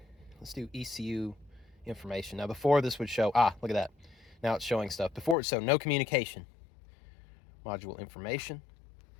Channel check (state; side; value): drops out; right; at 5.4 s